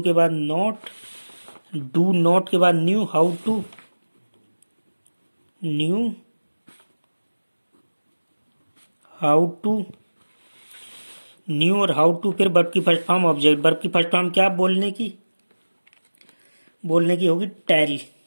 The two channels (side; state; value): both; inverted; correlation -1.00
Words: के बाद नॉट, डू नॉट के बाद know how to, know how to, know और हाउ टू, फिर वर्ब की फर्स्ट फॉर्म ऑब्जेक्ट, वर्ब की फर्स्ट फॉर्म क्या? बोलने की, बोलने की होगी टेल,